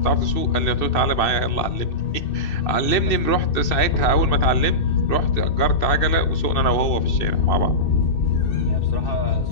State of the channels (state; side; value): late; right; 2.6 ms